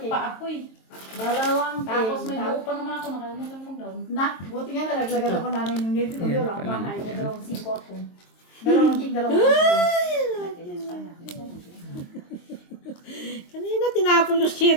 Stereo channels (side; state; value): right; late; 22 ms